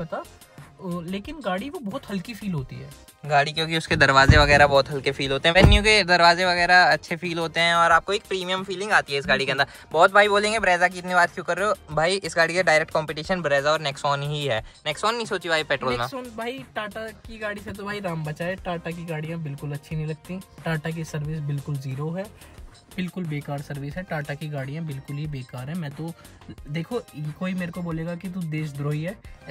लेकिन गाड़ी वो बहुत हल्की फील होती है गाड़ी, क्योंकि उसके दरवाजे वगैरह बहुत हल्के फील होते हैं। वेन्यू के दरवाजे वगैरह अच्छे फील होते हैं और आपको एक प्रीमियम फीलिंग आती है इस गाड़ी के अंदर। बहुत भाई बोलेंगे ब्रेजा की इतनी बात क्यों कर रहे हो? भाई इस गाड़ी का डायरेक्ट कंपटीशन ब्रेजा और नेक्सॉन ही है। नेक्सॉन नहीं सोची भाई पेट्रोल में? नेक्सॉन भाई टाटा की गाड़ी से तो भाई राम बचाए। टाटा की गाड़ियाँ बिल्कुल अच्छी नहीं लगती। टाटा की सर्विस बिल्कुल ज़ीरो है, बिल्कुल बेकार सर्विस है। टाटा की गाड़ियाँ बिल्कुल ही बेकार है। मैं तो देखो, कोई मेरे को बोलेगा कि तू देशद्रोही है,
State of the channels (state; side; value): identical; both; correlation 1.00